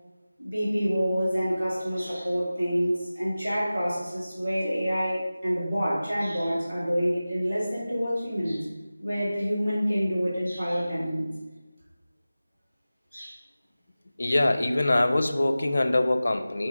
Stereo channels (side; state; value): both; inverted; correlation -0.96